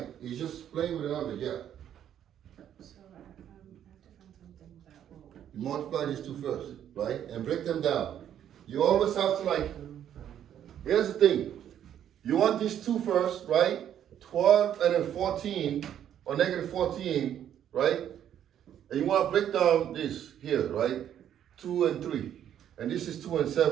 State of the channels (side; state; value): left; quieter; 10.1 dB